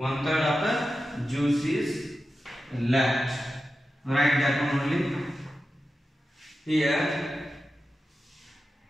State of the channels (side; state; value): both; normal; correlation 0.92